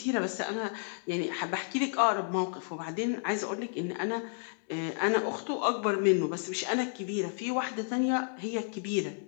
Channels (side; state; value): right; silent; digital silence